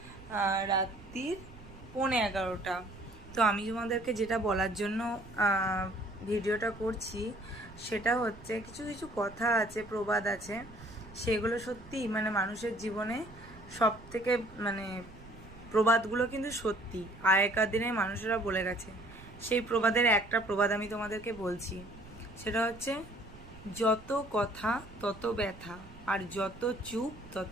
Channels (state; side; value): noise; right; rumble, 19 dB below the sound